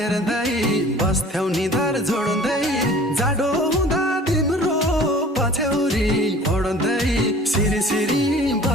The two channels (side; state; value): both; normal; correlation 0.47